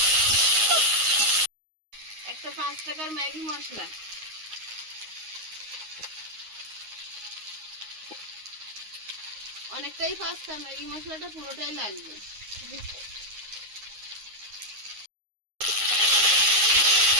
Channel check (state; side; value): late; left; 9.6 ms